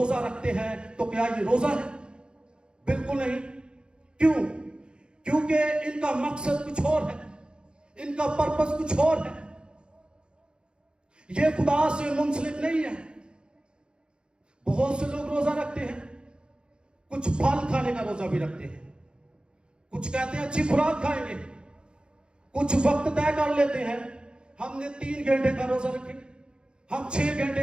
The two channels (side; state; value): left; late; 0.051 ms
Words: رکھتے ہیں، تو کیا یہ روزہ ہے؟ بالکل نہیں۔ کیوں؟ کیونکہ ان کا مقصد کچھ اور ہے، ان کا پرپس کچھ اور ہے، یہ خدا سے منسلک نہیں ہے۔ بہت سے لوگ روزہ رکھتے ہیں، کچھ پھل کھانے کا روزہ بھی رکھتے ہیں، کچھ کہتے ہیں اچھی خوراک کھائیں گے، کچھ وقت طے کر لیتے ہیں، ہم نے 3 گھنٹے کا روزہ رکھیں گے، ہم 6